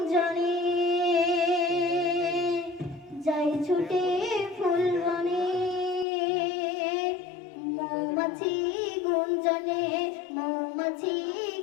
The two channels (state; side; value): drops out; right; at 6.1 s